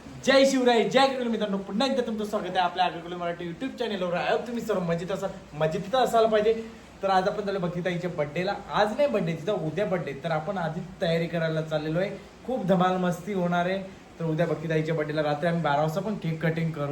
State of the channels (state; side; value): identical; both; correlation 1.00